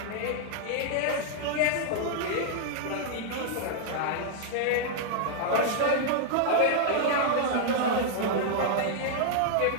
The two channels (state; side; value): different; both; correlation -0.01